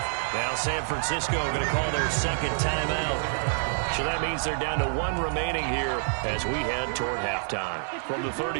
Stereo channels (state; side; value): silent; left; 56 dB below the other